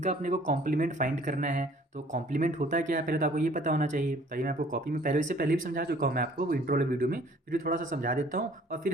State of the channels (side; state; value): both; normal; correlation 0.55